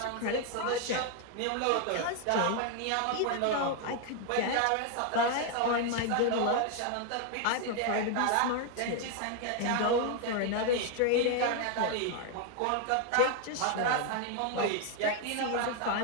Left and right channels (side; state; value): both; different; correlation 0.00